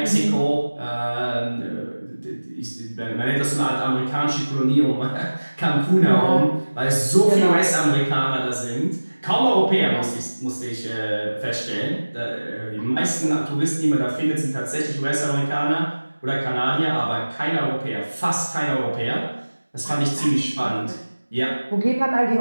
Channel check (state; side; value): inverted; both; correlation -1.00